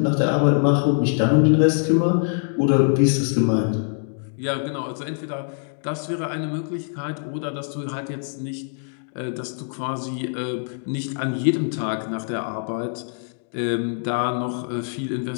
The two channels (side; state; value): right; silent; digital silence